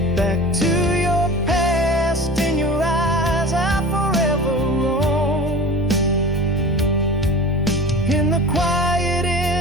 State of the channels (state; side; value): normal; both; correlation 0.37